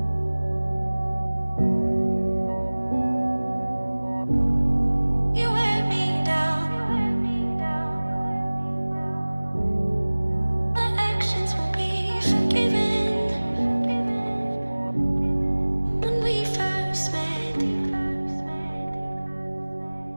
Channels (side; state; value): both; inverted; correlation -1.00